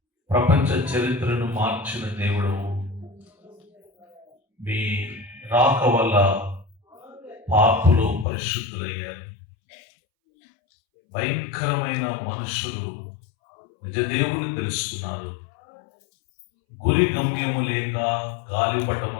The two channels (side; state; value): right; drops out; at 8.2 s